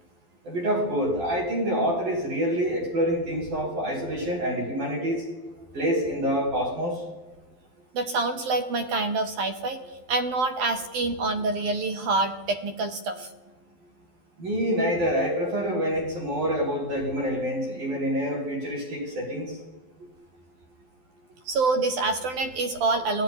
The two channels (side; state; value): left; late; 12 ms